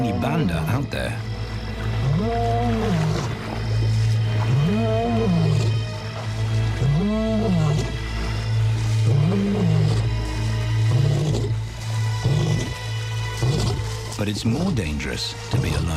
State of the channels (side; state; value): both; identical; correlation 1.00